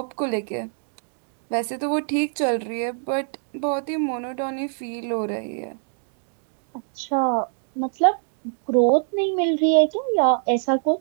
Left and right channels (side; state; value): left; silent; 62 dB below the other